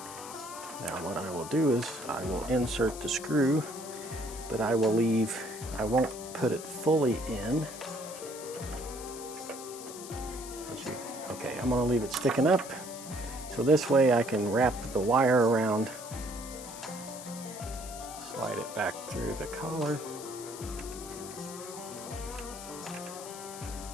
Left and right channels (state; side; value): noise; left; hiss, 12 dB below the sound